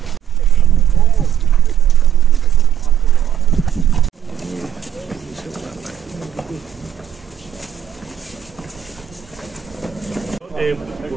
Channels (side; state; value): left; quieter; 10.0 dB